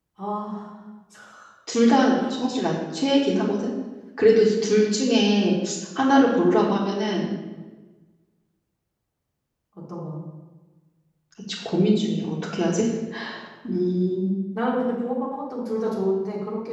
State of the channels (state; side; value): identical; both; correlation 1.00